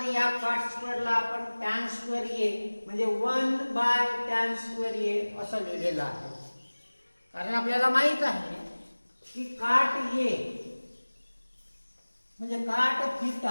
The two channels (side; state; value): both; inverted; correlation -1.00